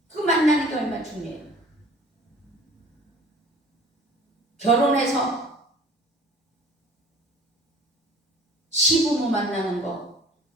그 만나는 게 얼마나 중요해요. 결혼해서 시부모 만나는 거,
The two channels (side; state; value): both; normal; correlation 0.48